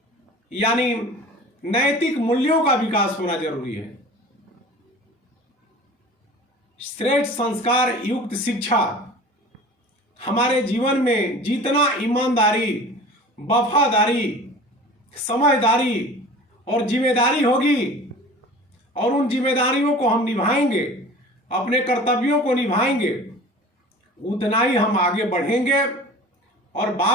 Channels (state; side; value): normal; both; correlation 0.41